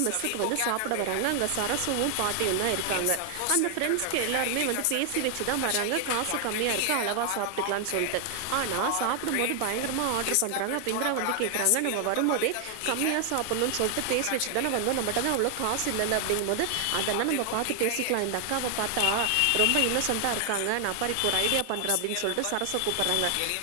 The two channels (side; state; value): both; different; correlation 0.00